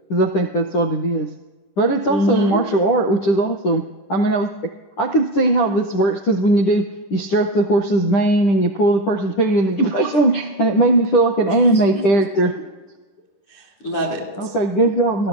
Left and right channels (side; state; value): right; late; 10 ms